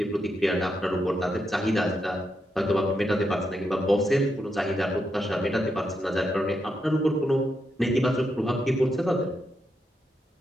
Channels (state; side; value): normal; both; correlation 0.82